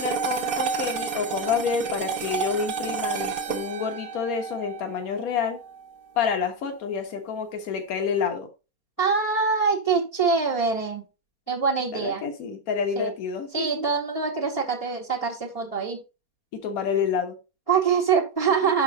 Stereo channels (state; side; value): late; right; 4.2 ms